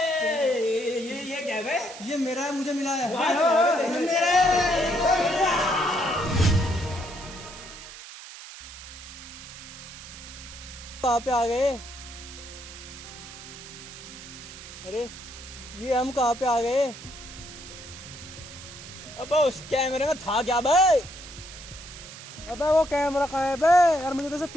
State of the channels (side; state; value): right; noise; hiss, 14 dB below the sound